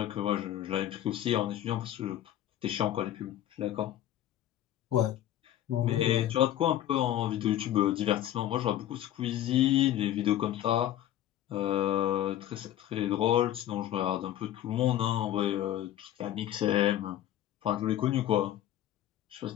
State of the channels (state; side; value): quieter; right; 12.3 dB